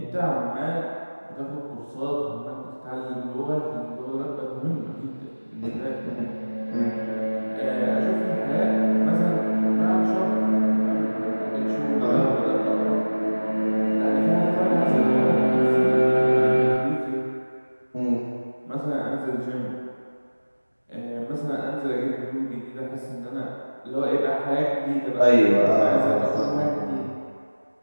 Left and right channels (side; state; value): both; inverted; correlation -1.00